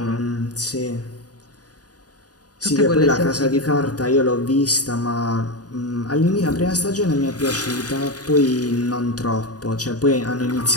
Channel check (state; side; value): late; right; 0.68 ms